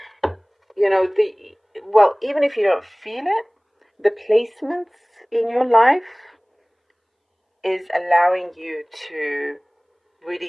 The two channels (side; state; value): both; identical; correlation 1.00